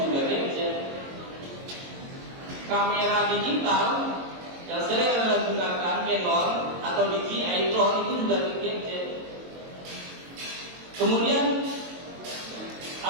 juga gadget. Kamera digital yang sering Anda gunakan, Canon atau DJI drone itu juga gadget. Kemudian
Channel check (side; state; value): left; late; 22 ms